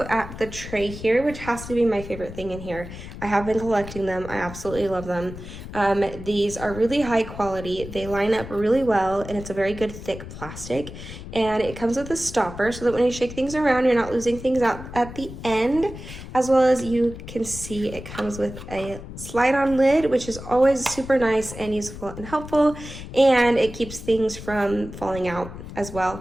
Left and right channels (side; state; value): left; noise; rumble, 12 dB below the sound